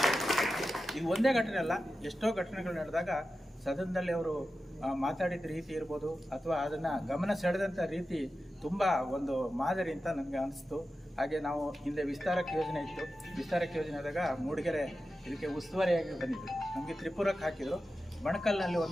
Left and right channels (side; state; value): both; normal; correlation 0.92